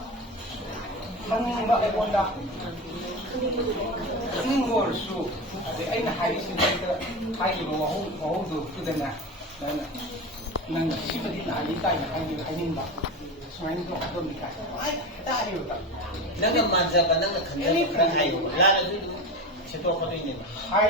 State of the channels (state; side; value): normal; both; correlation 0.25